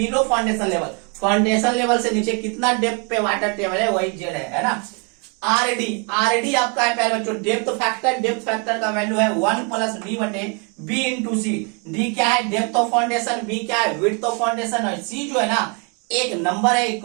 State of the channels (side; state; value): left; quieter; 35.0 dB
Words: foundation level, foundation level से नीचे कितना डेप्थ पे वाटर टेबल है वही जेड है ना। आरडी आपका है प्यारे बच्चों डेप्थ फैक्टर का वैल्यू है 1 प्लस डी बटे बी इंटू सी। डी क्या है, डेप्थ ऑफ फाउंडेशन, बी क्या है, विड्थ ऑफ फाउंडेशन, और सी जो है ना एक नंबर है, एक